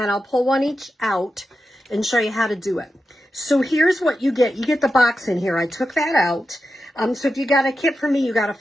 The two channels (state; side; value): normal; both; correlation 0.90